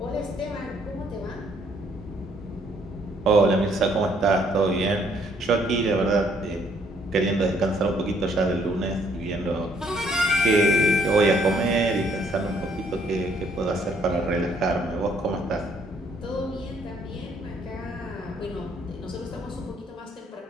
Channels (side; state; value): both; normal; correlation 0.66